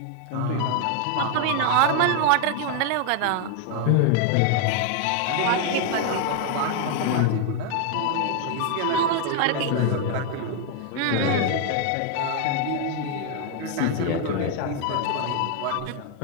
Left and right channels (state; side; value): different; both; correlation 0.00